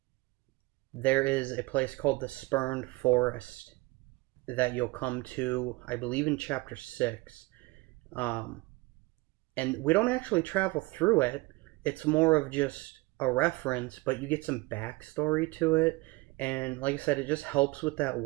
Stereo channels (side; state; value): left; quieter; 22.9 dB